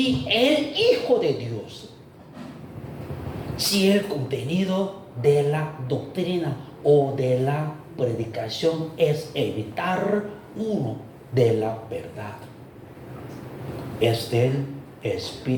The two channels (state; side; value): identical; both; correlation 1.00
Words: el Hijo de Dios. Si el contenido de la doctrina o de la predicación es evitar uno de la verdad, es del